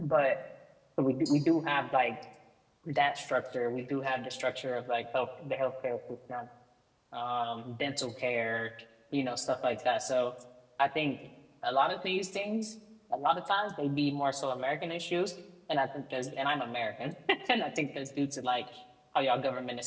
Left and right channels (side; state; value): both; identical; correlation 1.00